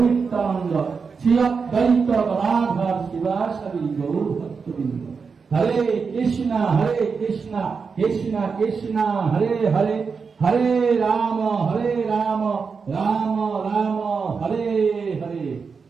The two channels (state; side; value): quieter; left; 5.3 dB